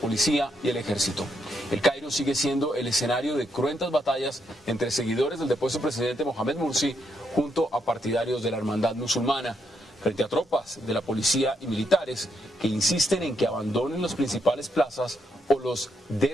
y el ejército. El Cairo sigue siendo el escenario de cruentas batallas entre seguidores del depuesto presidente Mohamed Morsi junto a partidarios de la hermandad musulmana, frente a tropas de la policía y militares que insisten en que abandonen las principales plazas o los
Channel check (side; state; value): both; normal; correlation 0.78